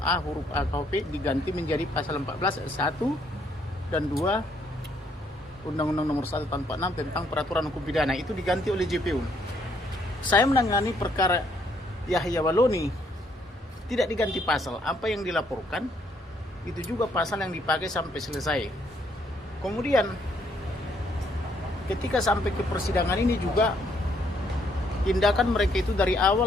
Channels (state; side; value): normal; both; correlation 0.70